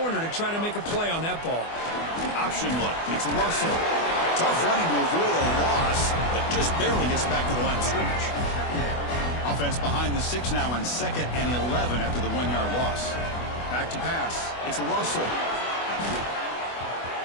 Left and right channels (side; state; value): right; late; 24 ms